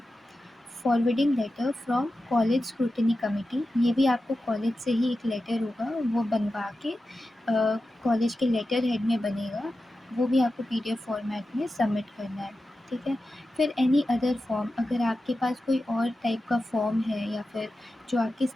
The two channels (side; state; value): both; normal; correlation 0.92